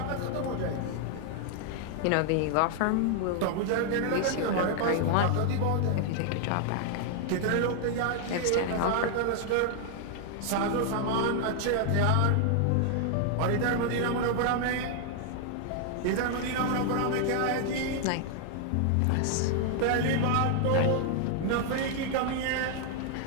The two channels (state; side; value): different; both; correlation 0.00